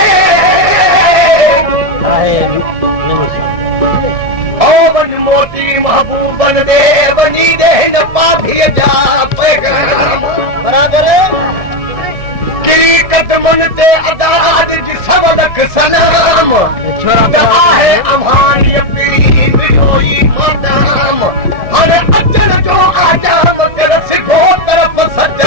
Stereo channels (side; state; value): left; late; 1.7 ms